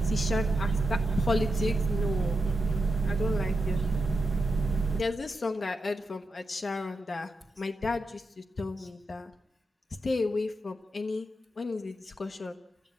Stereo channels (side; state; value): both; normal; correlation 0.87